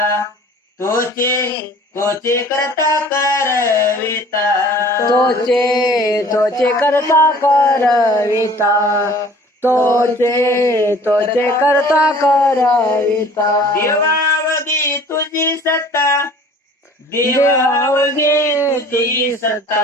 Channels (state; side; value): normal; both; correlation 0.49